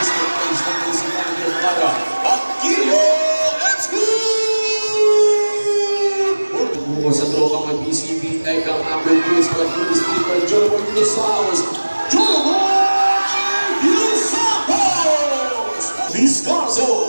page ng BCB para Aquilio Execute! Buko sa trokang ng BCB, Ekang Ambrose, Pag-Ulis, Pag-Ulis, Joloboy, Dinosauros, Joloboy, Dinosauros!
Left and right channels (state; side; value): inverted; both; correlation -1.00